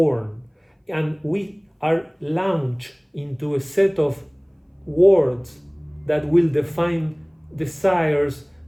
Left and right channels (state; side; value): identical; both; correlation 1.00